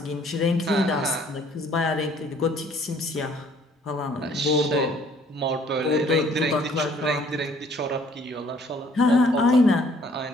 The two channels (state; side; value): normal; both; correlation 0.59